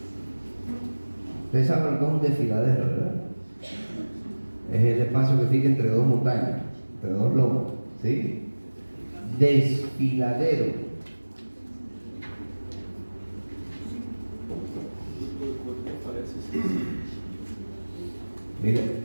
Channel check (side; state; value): both; inverted; correlation -1.00